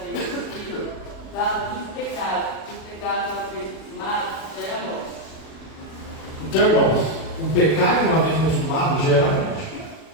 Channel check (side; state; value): right; late; 37 ms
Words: Então, irmãos, o pecado uma vez consumado gera morte,